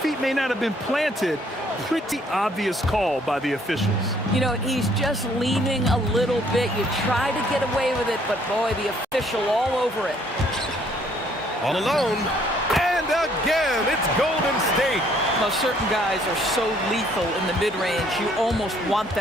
may not have been planted. Pretty obvious call by the officials. You know, he's just leaning a little bit. You try to get away with it, but boy, the official all over it. All alone. And again, it's Golden State. Now, certain guys are so lethal in the mid-range, you almost want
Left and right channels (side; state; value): both; normal; correlation 0.64